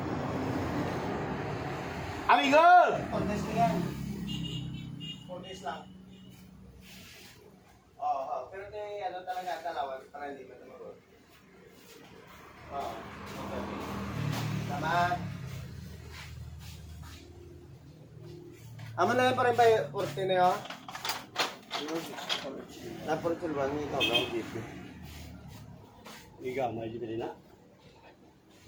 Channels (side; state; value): both; identical; correlation 1.00